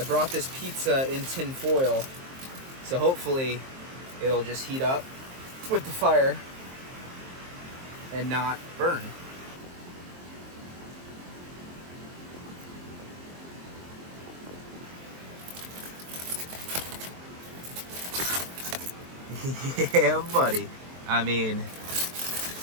brought this pizza in tin foil, so hopefully it'll just heat up with the fire and not burn. Yeah, buddy. I mean,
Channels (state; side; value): late; left; 23 ms